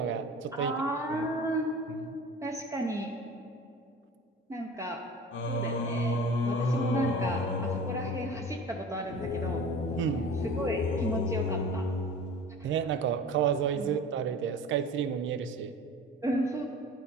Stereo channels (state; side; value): normal; both; correlation 0.39